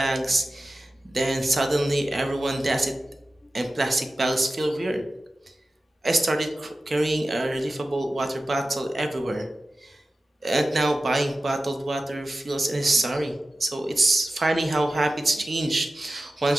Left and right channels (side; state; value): both; normal; correlation 0.95